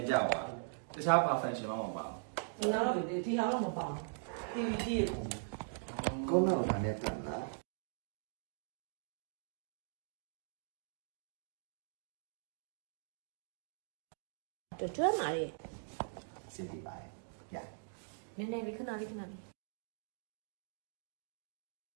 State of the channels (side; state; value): left; silent; digital silence